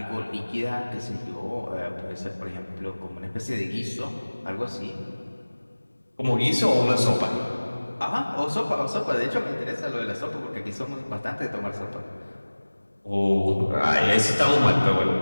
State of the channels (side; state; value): both; inverted; correlation -1.00